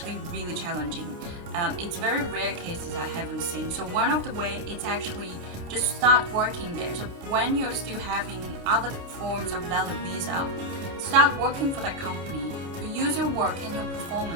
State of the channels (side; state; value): left; late; 29 ms